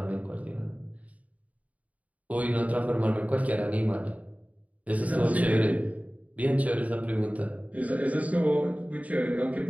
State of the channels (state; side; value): late; left; 0.070 ms